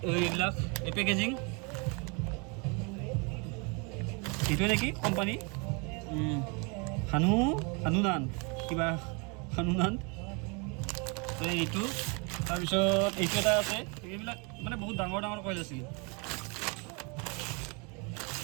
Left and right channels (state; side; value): quieter; left; 32.1 dB